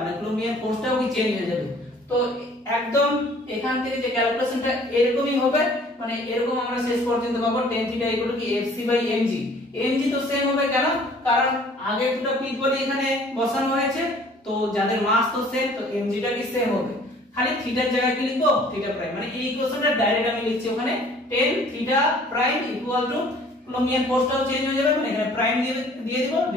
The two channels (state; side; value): normal; both; correlation 0.54